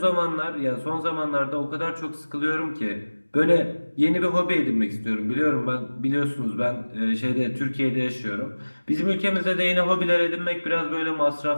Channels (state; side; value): inverted; both; correlation -1.00